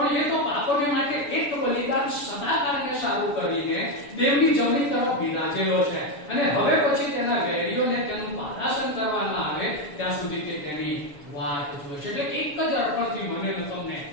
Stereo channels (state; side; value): late; right; 7.1 ms